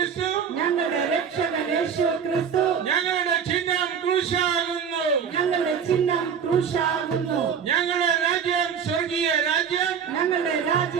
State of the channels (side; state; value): left; quieter; 7.2 dB